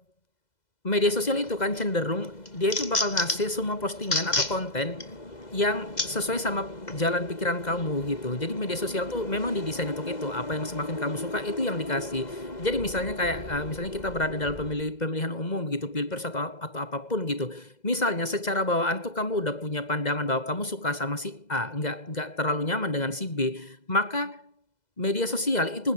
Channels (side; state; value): right; late; 2.0 ms